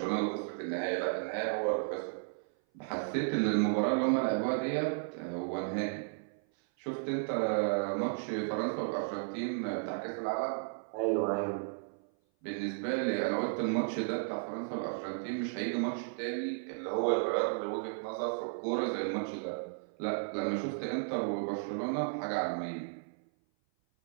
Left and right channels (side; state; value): left; silent; 55 dB below the other